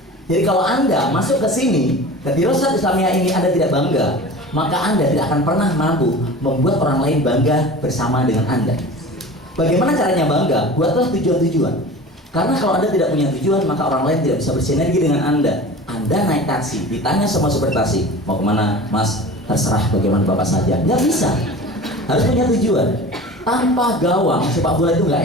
Jadi kalau Anda masuk ke sini, ke Dirosat Islamiyah ini Anda tidak bangga, maka Anda tidak akan pernah mampu membuat orang lain bangga bersama dengan Anda. Bagaimana caranya bangga? Buatlah tujuan-tujuan. Karena kalau Anda tidak punya tujuan, maka orang lain tidak bisa bersinergi dengan Anda. Anda naik taksi, ditanya sama supir taksi, mau kemana, Mas? Terserah, bagaimana Bapak saja. Nggak bisa. Harus punya tujuan. Tanpa gawang sepak bola itu nggak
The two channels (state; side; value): normal; both; correlation 0.37